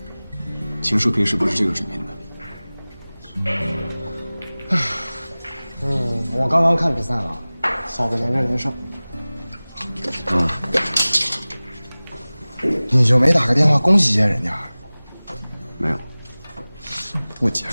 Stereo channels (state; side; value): inverted; both; correlation -0.99